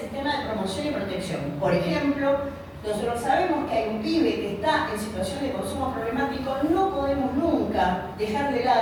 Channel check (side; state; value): both; identical; correlation 1.00